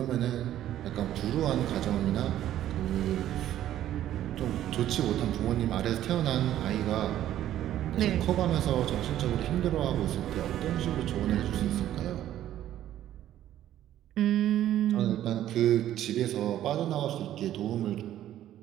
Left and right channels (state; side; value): quieter; left; 12.3 dB